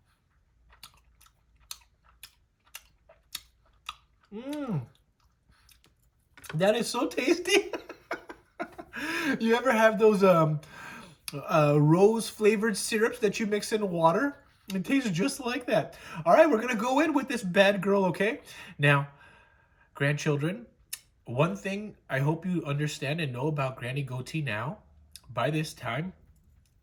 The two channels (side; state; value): both; identical; correlation 1.00